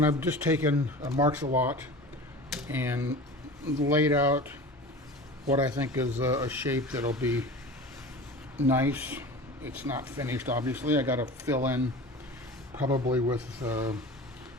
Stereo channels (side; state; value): both; normal; correlation 0.36